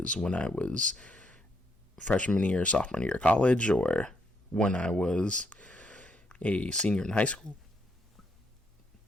when I was freshman year, sophomore year of college, or when I was a senior in high school.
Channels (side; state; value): both; normal; correlation 0.75